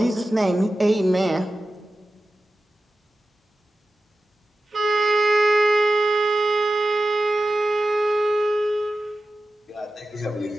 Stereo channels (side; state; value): both; normal; correlation 0.94